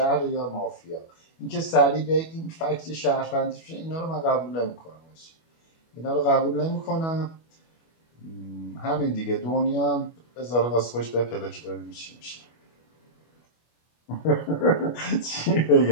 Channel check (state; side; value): late; right; 25 ms